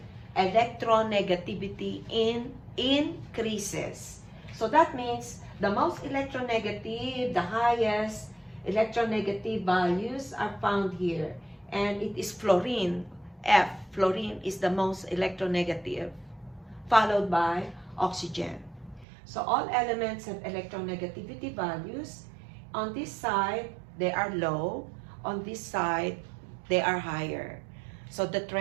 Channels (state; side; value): drops out; left; at 19.1 s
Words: electronegativity increases. So that means the most electronegative, the highest electronegative values are found here. And it is fluorine, F. Fluorine is the most electronegative, followed by oxygen. So all elements have electronegativity values. On this side, they are low. On this side, they are higher. So the